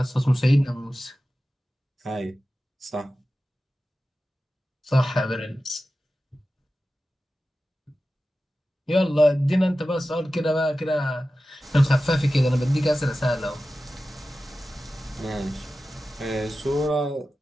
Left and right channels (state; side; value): normal; both; correlation 0.94